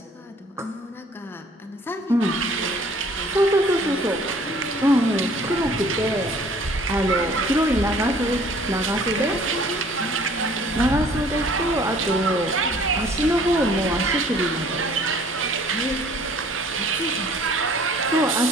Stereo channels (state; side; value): normal; both; correlation 0.54